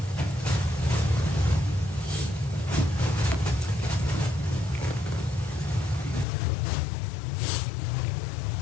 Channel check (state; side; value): drops out; right; at 6.2 s